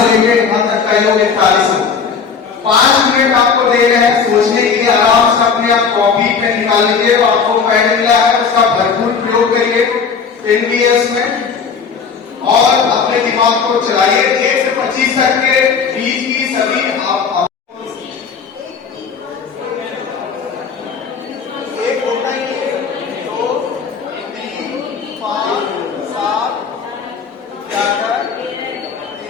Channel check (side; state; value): right; quieter; 6.0 dB